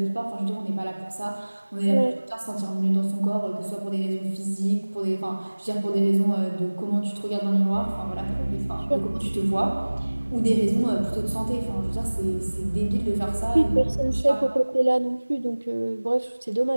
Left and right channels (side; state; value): both; inverted; correlation -1.00